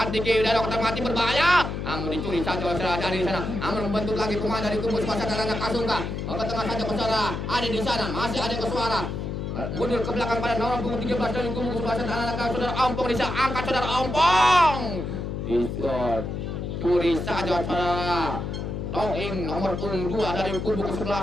Diki dari kotak mati berbahaya. Namun dicuri saja oleh saudara dari sana. Namun membentuk lagi pemain dari kubu kesebelasan anak-anak Kasungka. Ke tengah saja saudara ada di sana, masih ada Koswara. Mundur ke belakang pada nomor punggung 13 dari kubu kesebelasan anak-anak saudara Ompong di sana, angkat saudara Ompong. Dicuri saja saudara Toing nomor punggung 2 dari kubu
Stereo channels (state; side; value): noise; left; hum, 4 dB below the sound